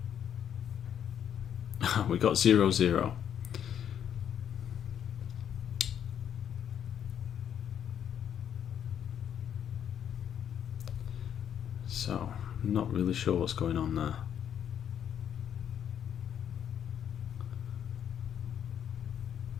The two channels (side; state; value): right; quieter; 9.1 dB